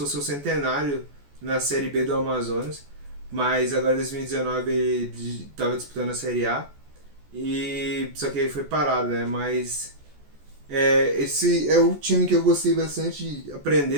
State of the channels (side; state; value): left; late; 14 ms